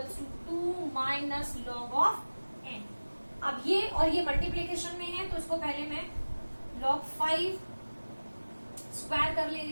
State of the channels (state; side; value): inverted; both; correlation -1.00